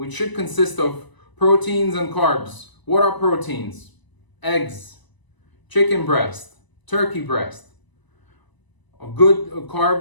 should consist of proteins and carbs. What are proteins? Eggs, chicken breast, turkey breast. A good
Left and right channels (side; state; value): right; late; 1.0 ms